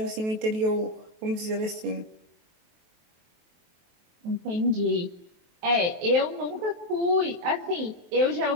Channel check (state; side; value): late; left; 23 ms